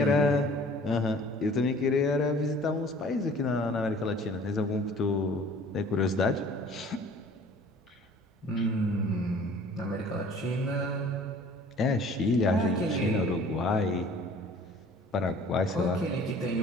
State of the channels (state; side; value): normal; both; correlation 0.50